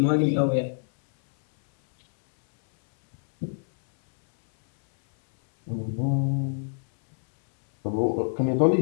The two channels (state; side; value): silent; right; 62 dB below the other